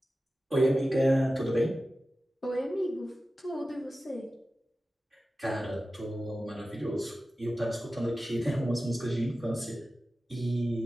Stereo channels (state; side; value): normal; both; correlation 0.95